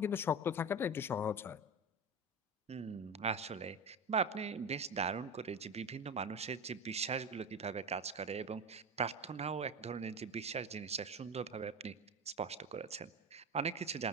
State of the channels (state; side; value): normal; both; correlation 0.22